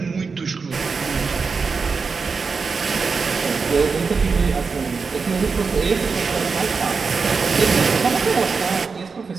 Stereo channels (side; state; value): left; quieter; 4.9 dB